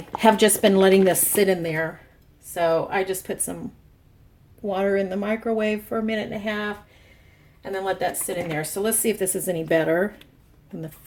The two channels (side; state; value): both; identical; correlation 1.00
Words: just been letting this sit in there. So I just put some water in the microwave for 1.5 minutes and then let that sit in there. So let's see if this is any better than the